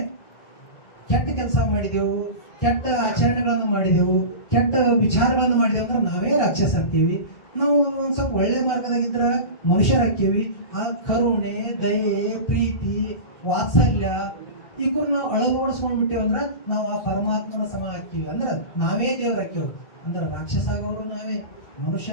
ಕೆಟ್ಟ ಕೆಲಸ ಮಾಡಿದೆವು ಕೆಟ್ಟ ಆಚರಣೆಗಳನ್ನು ಮಾಡಿದೆವು ಕೆಟ್ಟ ವಿಚಾರಗಳನ್ನು ಮಾಡಿದೆವು ಅಂದ್ರೆ ನಾವೇ ರಾಕ್ಷಸ ಆಗ್ತೀವಿ ನಾವು ಒಂದ್ ಸ್ವಲ್ಪ ಒಳ್ಳೆ ಮಾರ್ಗದಾಗಿದ್ರ ಮನುಷ್ಯರಾಗ್ತೀವಿ ಆ ಕರುಣೆ ದಯೆ ಪ್ರೀತಿ ವಾತ್ಸಲ್ಯ ಈಗ ನಾವು ಅಳವಡಿಸ್ಕೊಂಡ್ಬಿಟ್ಟೇವ ಅಂದ್ರೆ ನಾವು ಆ ಪರಮಾತ್ಮನ ಸಮ ಹಾಕ್ತೀವಿ ಅಂದ್ರೆ ನಾವೇ ದೇವ್ರಾಕ್ಯವ್ ಅಂದ್ರೆ ರಾಕ್ಷಸ ಆಗೋರು ನಾವೇ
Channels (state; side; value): late; right; 2.1 ms